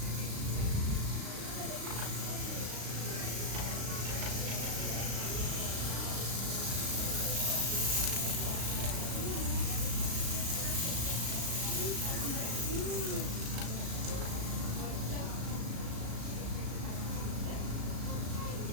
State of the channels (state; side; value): late; left; 36 ms